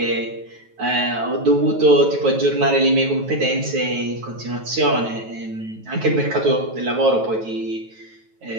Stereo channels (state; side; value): late; left; 9.2 ms